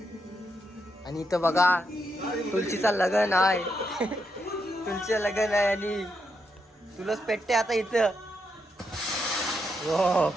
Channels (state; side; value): normal; both; correlation 0.82